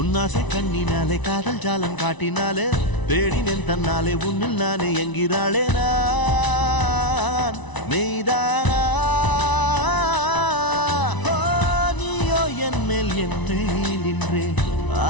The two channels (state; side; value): late; right; 1.0 ms